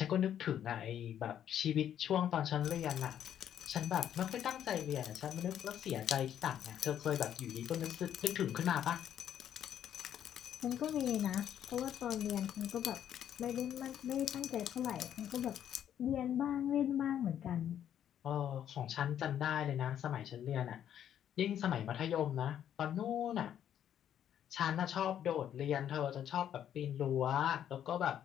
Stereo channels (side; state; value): right; quieter; 10.1 dB